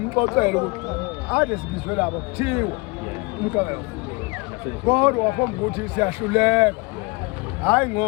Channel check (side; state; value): right; quieter; 27.7 dB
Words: ukuthi ade sibizwe labo kuthiwa umgangelo kodwa wafomba ukuthi siyahluleka hayi